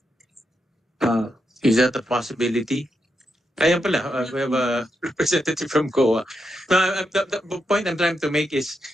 Is that a possibility? Ayan pala, we have a representative from COA. Now, the point I'm trying to make is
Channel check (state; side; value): normal; both; correlation 0.84